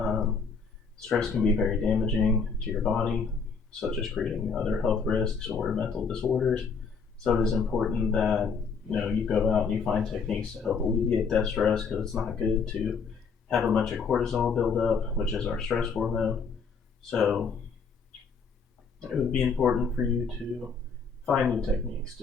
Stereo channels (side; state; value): right; quieter; 5.4 dB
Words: Stress can be very damaging to your body, such as creating other health risks or mental disorders. So it is important that you go out and you find techniques to help alleviate that stress, because it's not good to have a bunch of cortisol build up, which is our stress hormone. So it would be important for you to find new techniques